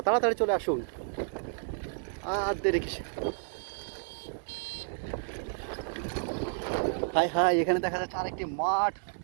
তাড়াতাড়ি চলে আসুন, আর দেরি কিসে। হাই হাই, এখানে দেখা যাচ্ছে আরেকটি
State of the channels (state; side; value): silent; left; digital silence